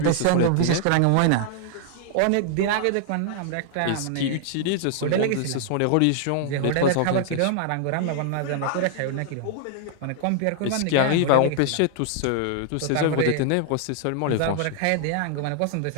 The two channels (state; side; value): different; both; correlation 0.00